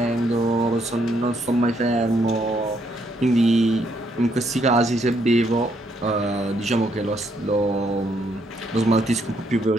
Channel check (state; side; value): normal; both; correlation 0.73